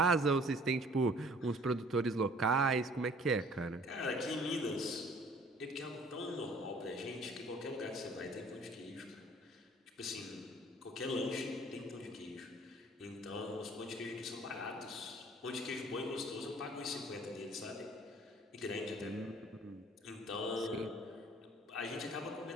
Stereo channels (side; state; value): both; normal; correlation 0.54